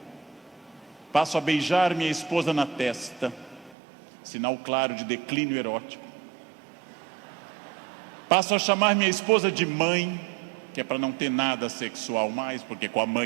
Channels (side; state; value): left; drops out; at 3.8 s